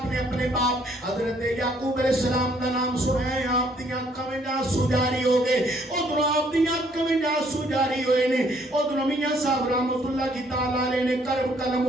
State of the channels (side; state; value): both; normal; correlation 0.65